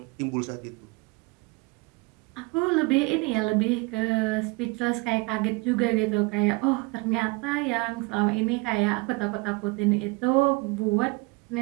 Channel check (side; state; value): left; quieter; 25.9 dB